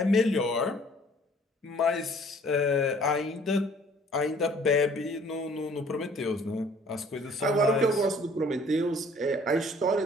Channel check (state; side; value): normal; both; correlation 0.56